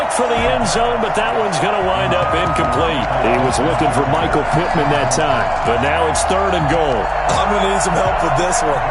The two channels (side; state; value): both; identical; correlation 1.00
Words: for the end zone, but that one's going to wind up incomplete. He was looking for Michael Pittman that time, but now it's third and goal. I'm going to need some help with this one.